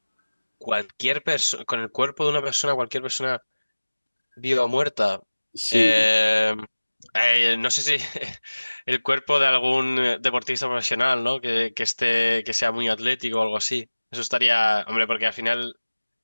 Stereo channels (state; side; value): inverted; both; correlation -1.00